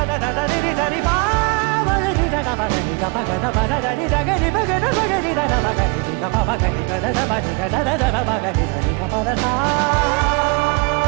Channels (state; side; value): quieter; left; 30.7 dB